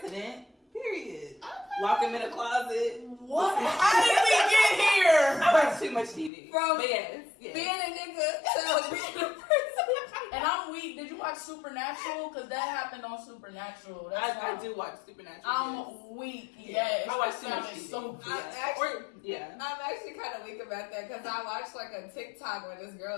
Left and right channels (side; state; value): right; drops out; at 6.3 s